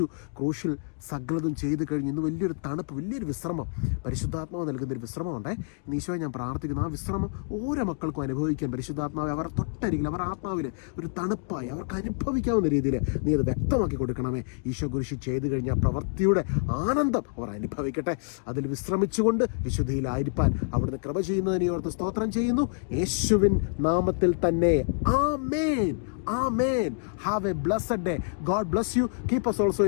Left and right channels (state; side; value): silent; right; 59 dB below the other